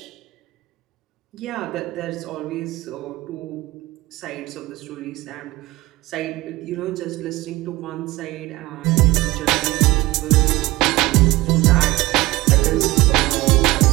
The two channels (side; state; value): left; quieter; 19.4 dB